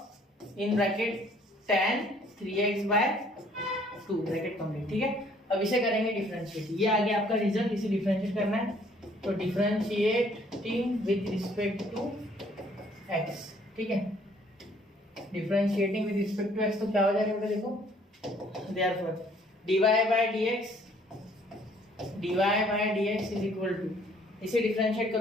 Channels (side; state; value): both; normal; correlation 0.61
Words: in bracket tan 3x by 2, bracket complete, ठीक है। अब इसे करेंगे डिफरेंशिएट, ये आ गया आपका रिजल्ट, इसे डिफरेंशिएट करना है, तो differentiating with respect to x, ठीक है, differentiating with respect to x, तो क्या हो जाएगा बेटा, देखो therefore dy by dx is equal to, इसे डिफरेंशिएट